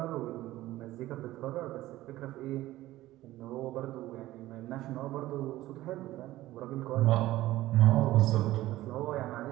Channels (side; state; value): left; quieter; 16.1 dB